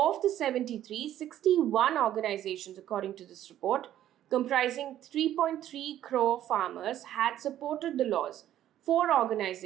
the 73, 61 organizations, according to this report, comprising 3.3 crore farmers, had supported the laws. 4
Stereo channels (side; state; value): left; quieter; 12.1 dB